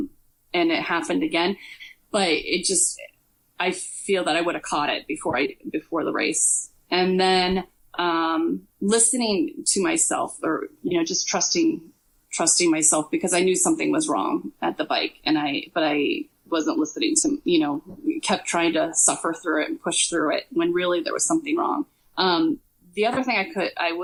it happened again. But I feel that I would have caught it before the race. And then listening to myself, or just trusting myself, because I knew something was wrong at the bike, but I wasn't listening to, kept trying to suffer through it and push through it when really there was something wrong. The other thing I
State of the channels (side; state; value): both; identical; correlation 1.00